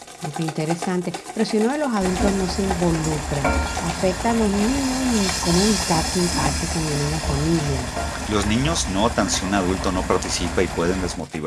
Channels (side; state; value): both; identical; correlation 1.00